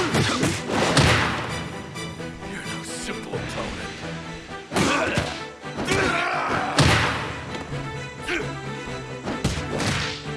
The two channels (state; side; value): identical; both; correlation 1.00